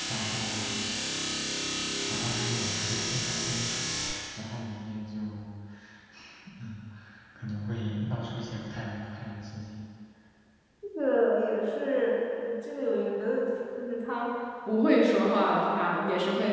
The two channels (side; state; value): both; identical; correlation 1.00